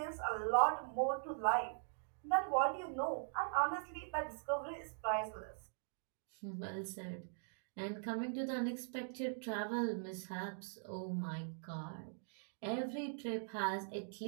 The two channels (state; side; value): silent; left; digital silence